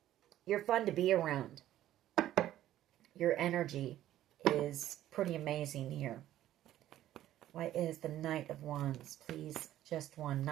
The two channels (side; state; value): left; quieter; 13.2 dB